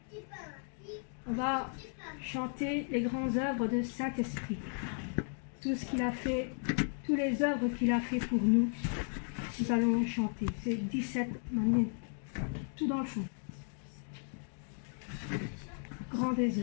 On va chanter les grandes œuvres de Saint-Esprit. Tout ce qu'il a fait, toutes les œuvres qu'il a fait pour nous, nous allons chanter. C'est 17 manières, tout dans le fond. grand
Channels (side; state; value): right; silent; 54 dB below the other